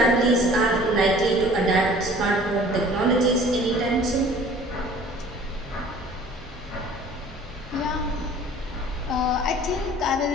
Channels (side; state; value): both; normal; correlation 0.49